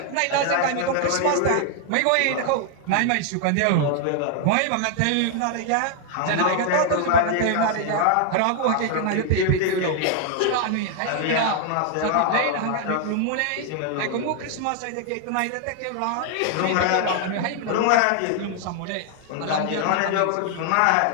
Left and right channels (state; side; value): different; both; correlation 0.00